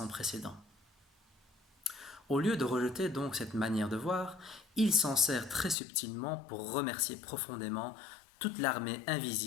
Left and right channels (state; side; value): drops out; right; at 5.8 s